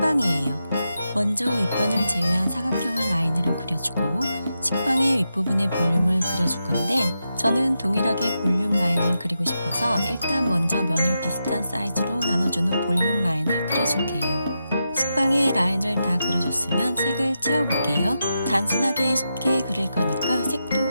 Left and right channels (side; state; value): both; inverted; correlation -0.87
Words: 먼저 윗변을 제외한 사각형을 라인으로 그려주고 식빵의 윗부분의 볼륨을 그려줄 건데 저는 동일하게 볼륨 라인을 그리고 싶어서 일단 먼저 면을 비슷한 사이즈로 나눠주는 볼륨 라인을 그려줄게요. 식빵의 라인을 다 그려줬으면 색을 채워볼게요. 단순하게 쉽게 그릴 거니까 색도